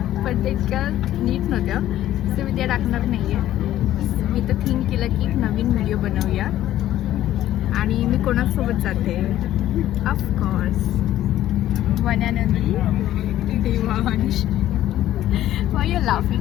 पण ते इतक्या नीट नव्हत्या, सो मी त्या टाकणार नाही आहे. मी तर थिंक केलं की एक नवीन व्हिडिओ बनवूया. आणि मी कोणासोबत जाते? Of course one and only Devansh. Y you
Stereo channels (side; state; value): right; quieter; 13.2 dB